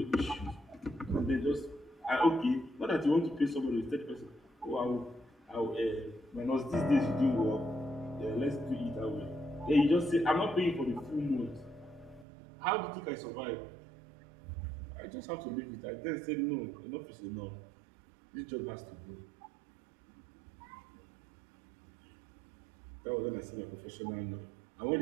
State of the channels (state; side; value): drops out; left; at 12.2 s